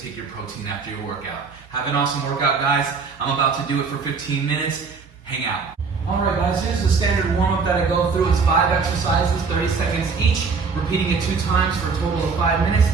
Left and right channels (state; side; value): quieter; left; 5.1 dB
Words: take your protein after your workout. Have an awesome workout, guys. I'm about to do it for 15 minutes. Hang out. All right, guys, here's the standard warm-up that I go through. It's 5 exercises, 30 seconds each, repeating it 2 times for a total of 5 minutes.